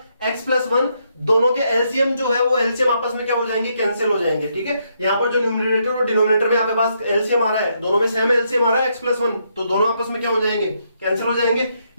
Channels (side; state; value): both; inverted; correlation -0.76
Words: x प्लस वन, दोनों के एलसीएम जो है वो एलसीएम आपस में क्या हो जाएंगे, कैंसिल हो जाएंगे। ठीक है, यहाँ पर जो न्यूमरेटर और डिनोमिनेटर में आपके पास एलसीएम आ रहा है, दोनों में सेम एलसीएम आ रहा है x प्लस वन, तो दोनों आपस में क्या हो जाएंगे, कैंसिल हो जाएंगे।